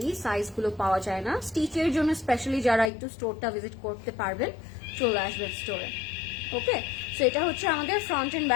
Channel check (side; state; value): right; drops out; at 2.9 s